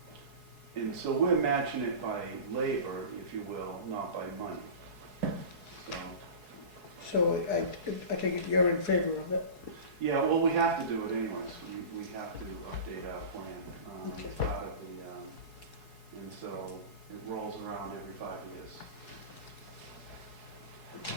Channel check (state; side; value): late; left; 4.7 ms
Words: And so we're matching it by labor, if you will, not by money. So I take it you're in favor of it? Yeah, well, we have to do it anyways. We have to update our plan. Okay. It's part of the, and so it rolls around every 5 years.